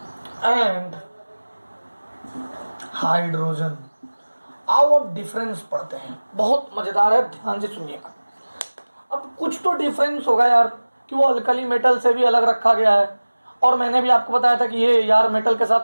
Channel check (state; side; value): inverted; both; correlation -1.00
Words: and hydrogen. आओ अब डिफरेंस पढ़ते हैं, बहुत मजेदार है, ध्यान से सुनिएगा। अब कुछ तो डिफरेंस होगा यार कि वो अल्कली मेटल से भी अलग रखा गया है, और मैंने भी आपको बताया था कि ये यार मेटल के